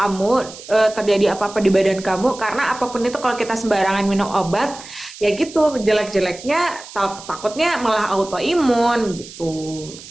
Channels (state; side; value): noise; right; hiss, 16 dB below the sound